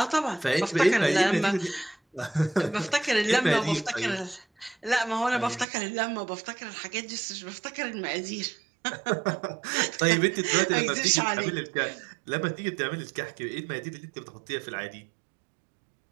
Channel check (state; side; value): drops out; left; at 5.7 s